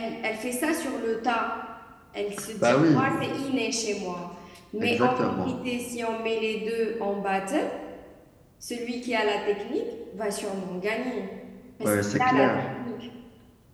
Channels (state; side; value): identical; both; correlation 1.00